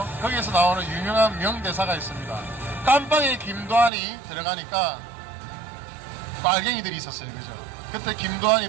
거기에서 나오는 유명한 명대사가 있습니다. 깜빵에 김두한이 들어가니까 빨갱이들이 있었어요. 그죠? 그때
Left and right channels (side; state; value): left; drops out; at 3.9 s